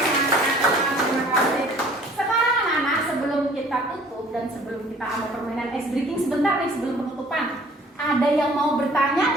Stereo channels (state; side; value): normal; both; correlation 0.53